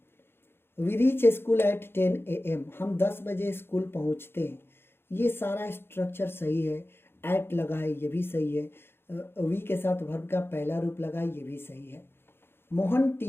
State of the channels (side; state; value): right; late; 0.11 ms